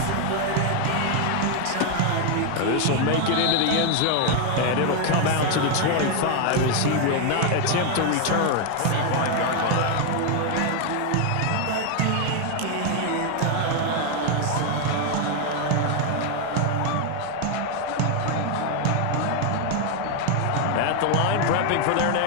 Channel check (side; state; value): both; different; correlation 0.01